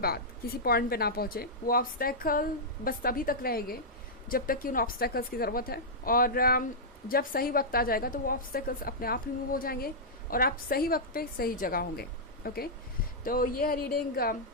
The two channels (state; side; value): normal; both; correlation -0.10